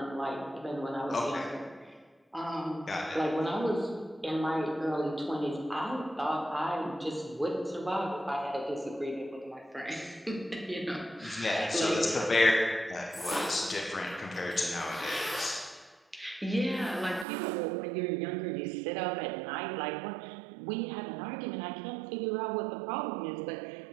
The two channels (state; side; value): drops out; left; at 17.2 s